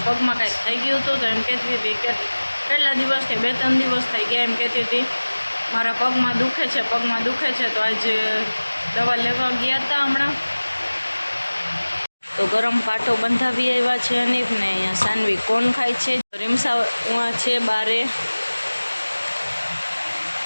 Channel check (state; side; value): inverted; both; correlation -1.00